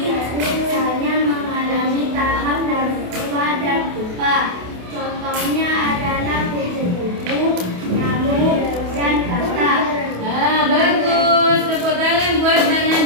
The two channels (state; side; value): late; left; 28 ms